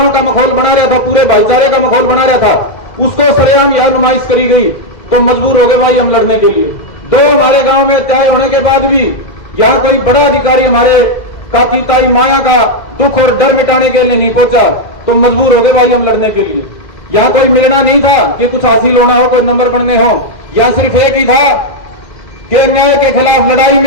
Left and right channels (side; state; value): right; late; 2.0 ms